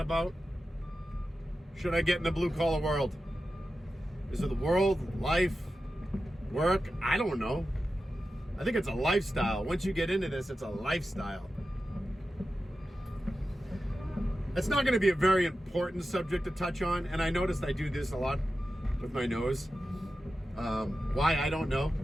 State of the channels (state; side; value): normal; both; correlation 0.92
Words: about, should I get in the blue collar world? Is it the world, life, work? I don't know. I think it's a lifestyle. Once you get into this, it's a lifestyle. It's not going to be a very important subject to touch on, and I noticed I do this a lot with my nose. Why, I don't know,